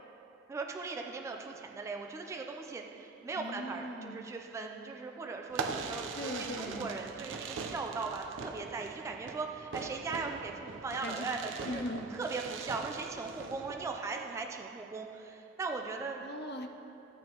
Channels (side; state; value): left; quieter; 3.3 dB